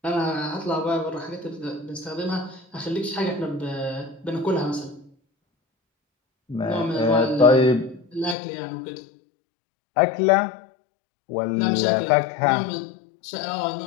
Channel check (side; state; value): right; drops out; at 8.3 s